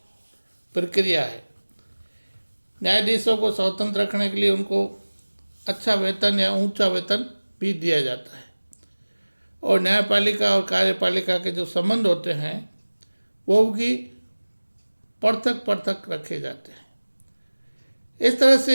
प्रक्रिया है। न्यायाधीशों को स्वतंत्र रखने के लिए उनको अच्छा वेतन या ऊंचा वेतन भी दिया जाता है, और न्यायपालिका और कार्यपालिका के जो संबंध होते हैं वो भी पृथक पृथक रखे जाते हैं। इस तरह से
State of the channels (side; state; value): both; inverted; correlation -1.00